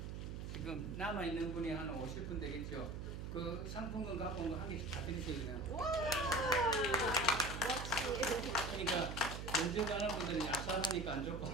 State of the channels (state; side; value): noise; right; hum, 6 dB below the sound